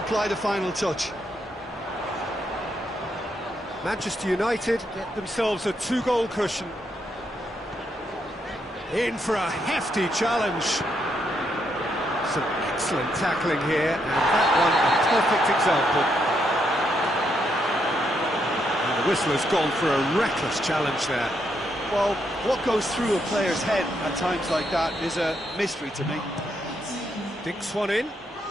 the final touch. Manchester United get themselves a 2-goal cushion. In for a hefty challenge. Some excellent tackling here, and that one a perfect example. And the whistle has gone for a reckless challenge there. Well, what goes through a player's head at times like that is a mystery to me. Dinks one in.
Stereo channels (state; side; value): normal; both; correlation 0.78